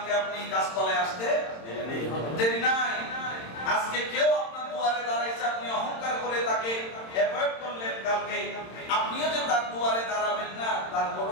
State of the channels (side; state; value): right; late; 26 ms